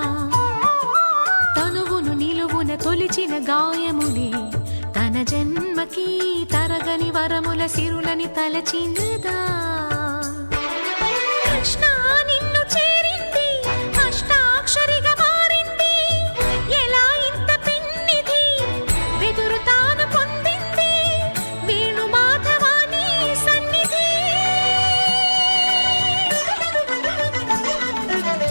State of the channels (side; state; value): both; inverted; correlation -1.00